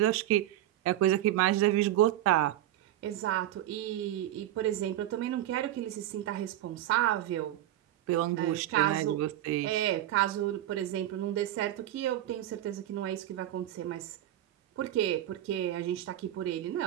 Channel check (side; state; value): left; quieter; 13.3 dB